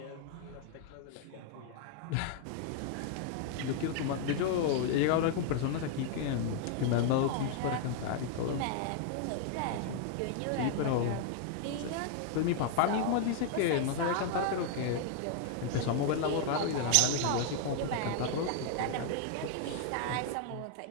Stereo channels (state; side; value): different; both; correlation 0.00